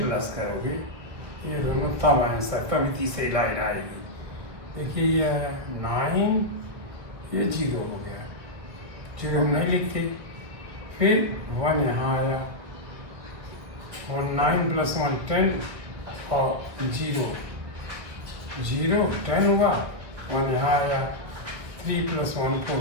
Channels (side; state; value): left; late; 1.8 ms